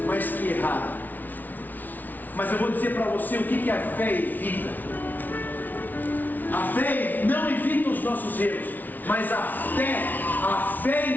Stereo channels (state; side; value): late; right; 0.082 ms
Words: mas que erraram. Mas eu vou dizer para você o que a fé evita. A fé não evita os nossos erros, mas a fé